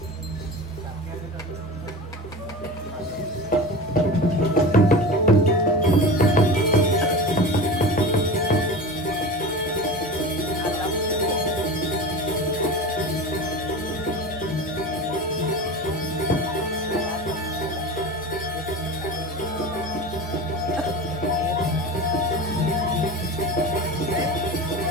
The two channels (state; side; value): normal; both; correlation 0.30